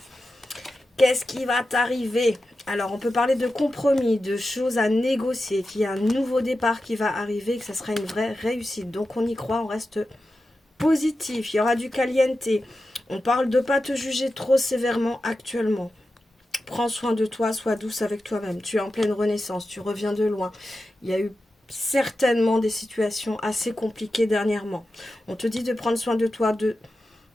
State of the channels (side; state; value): both; normal; correlation 0.92